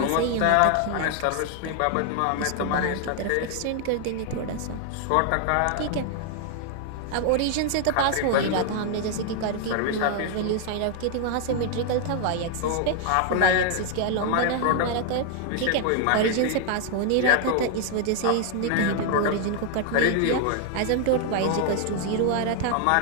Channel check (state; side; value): different; both; correlation 0.00